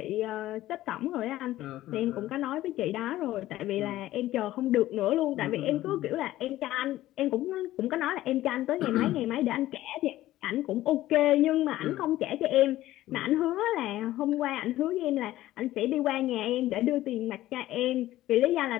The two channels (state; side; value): quieter; right; 15.1 dB